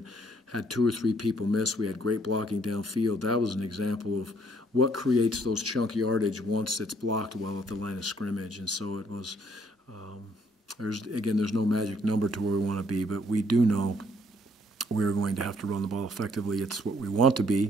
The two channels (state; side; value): normal; both; correlation 0.65